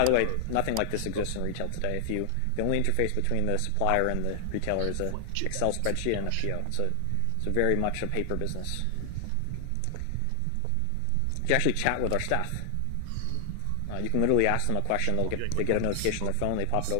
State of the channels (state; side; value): different; both; correlation 0.00